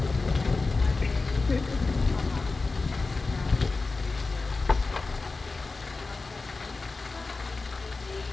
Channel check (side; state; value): right; quieter; 3.8 dB